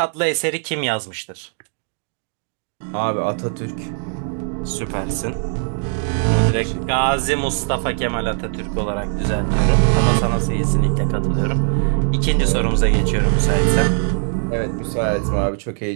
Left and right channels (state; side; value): silent; left; 55 dB below the other